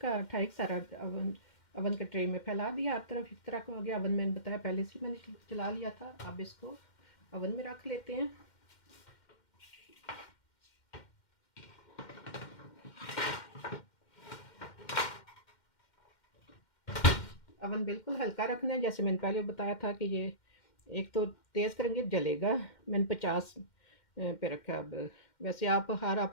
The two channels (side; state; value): right; late; 2.1 ms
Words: का ठीक सारा अवन के ट्रे में फैला दिया, हर तरफ इस तरह का हो गया। अवन मैंने बताया पहले से मैंने चला लिया था। अब इसको अवन में रख लेते हैं। अवन बिल्कुल हल्का रखना है, जैसे मैंने पहले बताया था कि ये एक तो तेज़ करेंगे जलेगा। मैंने 50 पे रखा। अब वैसे आप हर